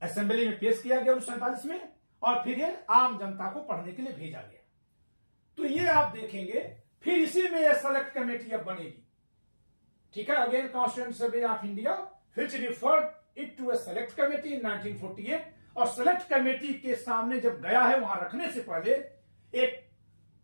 assembly में पेश किया गया 1947 में और फिर ये आम जनता को पढ़ने के लिए भेजा गया। तो ये आप देखेंगे, फिर इसी में ये सेलेक्ट कमेटी अब बनेगी। ठीक है, again constituent assembly of India which referred it to a select committee in 1948। और सेलेक्ट कमेटी के सामने जब गया है, वहां रखने से पहले एक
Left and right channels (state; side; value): inverted; both; correlation -1.00